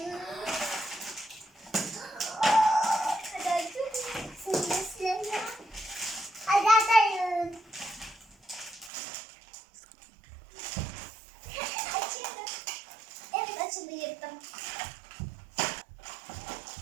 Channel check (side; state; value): left; drops out; at 8.9 s